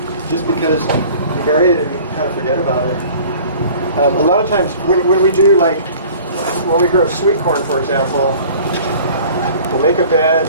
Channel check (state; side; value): inverted; both; correlation -0.47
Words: just because you bury it and you kind of forget about it. A lot of times when we do, like when we grow sweet corn, for example, we'll make a bed,